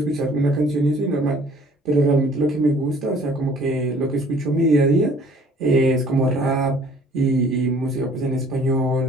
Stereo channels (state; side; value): normal; both; correlation 0.54